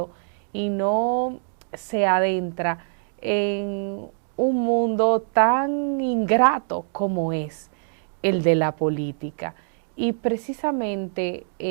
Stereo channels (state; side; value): silent; left; digital silence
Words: y no se adentra en un mundo tan ingrato como es el de la política. Y precisamente